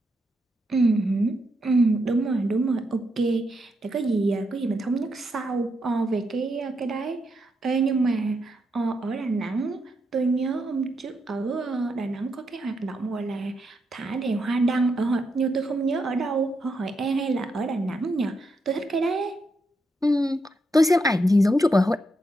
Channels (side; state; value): both; normal; correlation 0.82